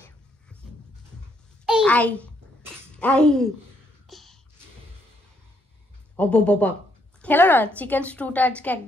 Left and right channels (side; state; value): both; normal; correlation 0.73